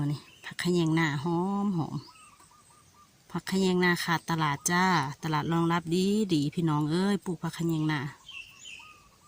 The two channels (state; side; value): identical; both; correlation 1.00